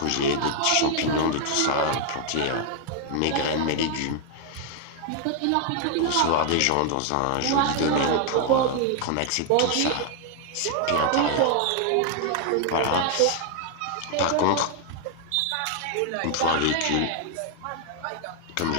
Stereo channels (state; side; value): different; both; correlation 0.00